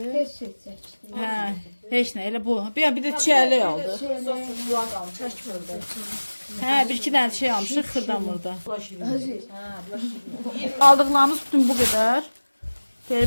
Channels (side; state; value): both; inverted; correlation -1.00